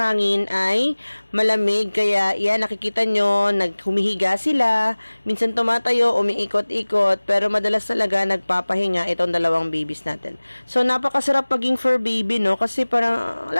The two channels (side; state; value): both; inverted; correlation -1.00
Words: ay malamig. Kaya yan, nakikita nyo, humihiga sila. Minsan tumatayo, umiikot-ikot. Pero madalas talaga nagpapahinga itong dalawang babies natin. So napakasarap maging fur baby, no? Kasi parang,